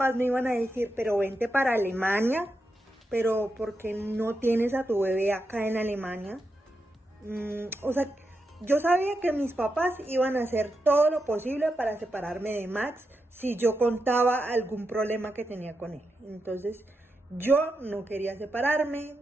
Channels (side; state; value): both; normal; correlation 0.86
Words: me iban a decir, pero vente para Alemania, pero ¿por qué no tienes a tu bebé acá en Alemania? O sea, yo sabía que mis papás iban a hacer todo lo posible para separarme de Max si yo contaba algún problema que tenía con él. Entonces yo no quería separarme,